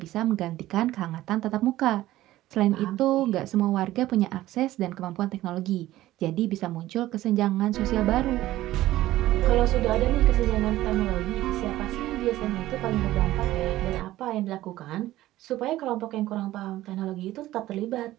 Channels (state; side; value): quieter; left; 15.4 dB